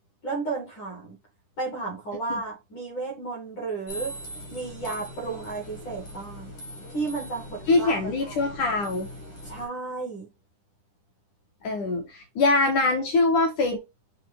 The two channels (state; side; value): late; right; 10 ms